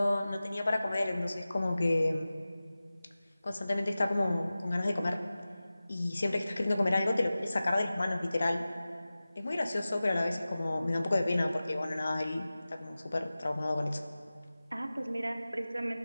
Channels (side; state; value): both; inverted; correlation -0.96